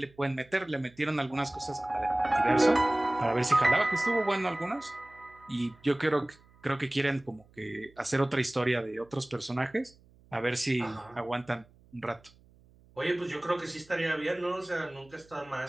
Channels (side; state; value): right; noise; hum, 28 dB below the sound